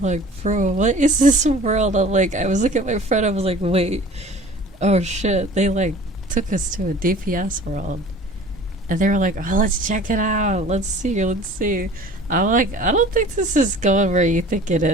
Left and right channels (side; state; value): both; normal; correlation 0.45